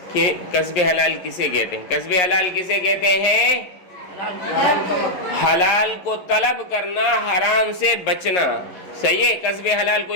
کہ کسب حلال کسے کہتے ہیں؟ کسب حلال کسے کہتے ہیں؟ حلال کو طلب کرنا، حرام سے بچنا، صحیح ہے؟ کسب حلال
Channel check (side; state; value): right; late; 11 ms